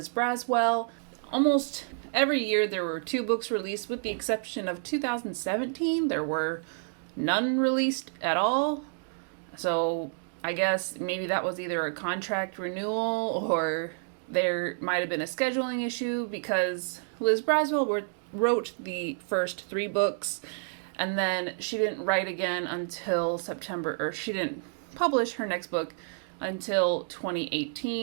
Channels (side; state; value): left; silent; digital silence